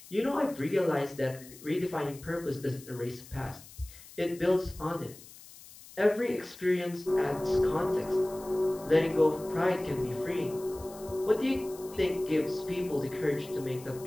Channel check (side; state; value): left; noise; hiss, 19 dB below the sound